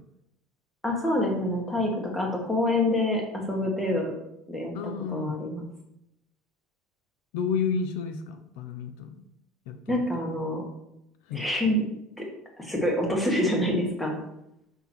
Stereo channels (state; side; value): normal; both; correlation 0.39